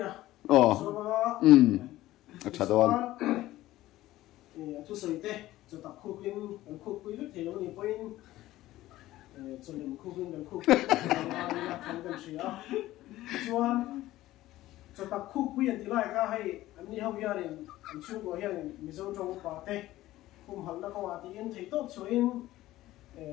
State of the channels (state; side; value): quieter; right; 15.8 dB